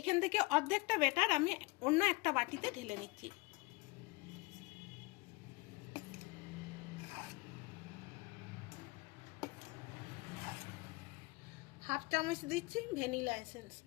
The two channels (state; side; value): quieter; right; 24.1 dB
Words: থেকে অর্ধেকটা ব্যাটার আমি অন্য একটা বাটিতে ঢেলে নিচ্ছি। হাফ চামচ দিচ্ছি ভ্যানিলা এসেন্স।